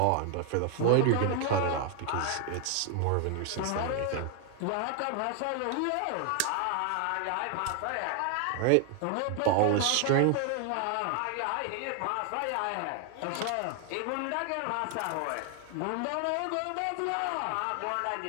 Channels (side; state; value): both; different; correlation 0.00